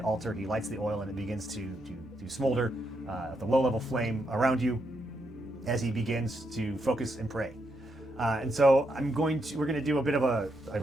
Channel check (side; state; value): both; normal; correlation 0.80